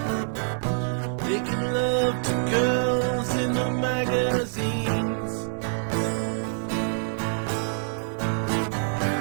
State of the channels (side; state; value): left; silent; 61 dB below the other